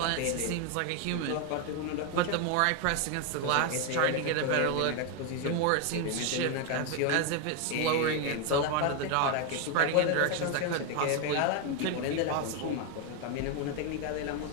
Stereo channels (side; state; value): both; different; correlation 0.01